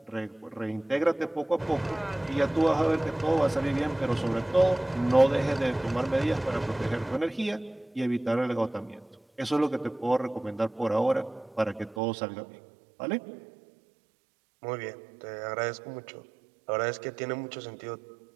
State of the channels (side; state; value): left; drops out; at 12.0 s